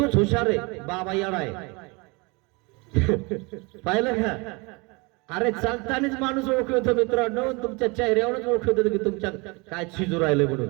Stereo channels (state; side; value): quieter; left; 27.9 dB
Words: हुशार आहे, बाबा येडा आहे. पाहिलं का? अरे चालतानाच माणूस ओळखतो मित्रांनो, तुमच्या चेहऱ्यावरच ओळखतो की तुमच्या काय शिजू राहिले